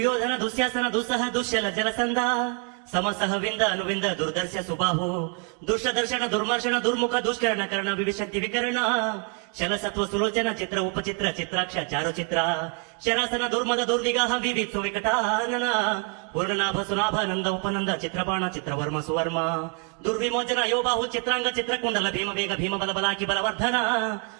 ದುಶ್ಯಾಸನ ದುಸ್ಸಹ ದುಶ್ಯಲ ಜಲಸಂಧ ಸಮಸಹವಿಂದ ಅನುವಿಂದ ದುರ್ದರ್ಶ ಸುಬಾಹು ದುಷ್ಟದರ್ಶನ ದುರ್ಮರ್ಶನ ದುರ್ಮುಖ ದುಷ್ಕರಣ ಕರ್ಣ ವಿವಿಶಂತಿ ವಿಕರಣ ಶಲಸತ್ವ ಸುಲೋಚನ ಚಿತ್ರ ಉಪಚಿತ್ರ ಚಿತ್ರಾಕ್ಷ ಚಾರುಚಿತ್ರ ಶರಾಸನ ದುರ್ಮದ ದುರ್ವಿಗಾಹ ವಿವಿತ್ಸು ವಿಕಟಾನನ ಪೂರ್ಣನಾಭ ಸುನಾಭ ನಂದ ಉಪನಂದ ಚಿತ್ರಬಾಣ ಚಿತ್ರವರ್ಮ ಸುವರ್ಮ ದುರ್ವಿಮೋಚನ ಯೋಬಾಹು ಚಿತ್ರಾಂಗ ಚಿತ್ರಕುಂಡಲ ಭೀಮ ಬೇಗ ಭೀಮ ಬಲ ಬಲಾಕಿ ಬಲವರ್ಧನ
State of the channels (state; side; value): quieter; left; 35.2 dB